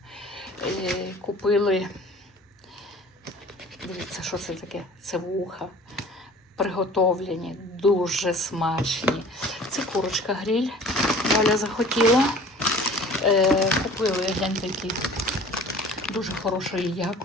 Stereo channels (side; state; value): both; normal; correlation 0.46